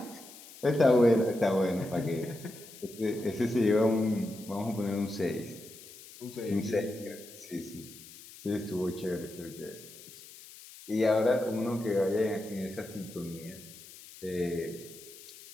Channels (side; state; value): left; noise; hiss, 18 dB below the sound